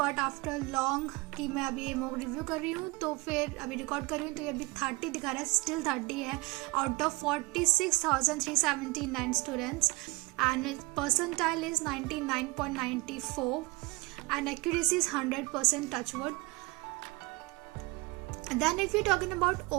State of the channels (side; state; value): left; quieter; 24.6 dB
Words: after long कि मैं अभी ये mock review कर रही हूँ तो फिर अभी रिकॉर्ड कर रही हूँ तो ये अभी 30 दिखा रहा है, स्टिल 30 है out of 46,379 students and percentile is 99.94 and accuracy is 100% touchwood. Then if you're talking about